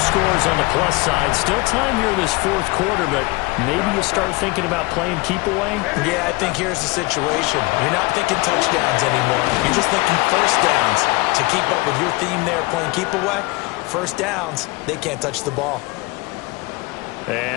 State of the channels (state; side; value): quieter; right; 24.0 dB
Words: on the plus side. Still time here in this fourth quarter, but maybe you start thinking about playing keep away? Yeah, I think here's the situation. You're not thinking touchdowns anymore. You're just thinking first downs. To keep up with your theme there, playing keep away, first downs, they can't touch the ball.